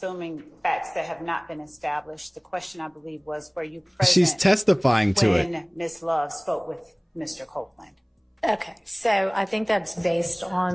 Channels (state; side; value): identical; both; correlation 1.00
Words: facts that have not been established. The question, I believe, was, were you present She's testifying to it. when Ms. Love spoke with Mr. Copeland? Okay, so I think that's based